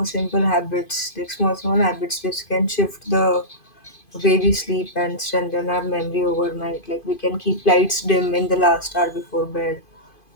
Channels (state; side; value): late; right; 2.5 ms